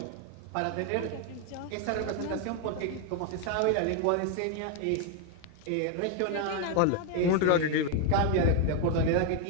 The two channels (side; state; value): both; different; correlation 0.01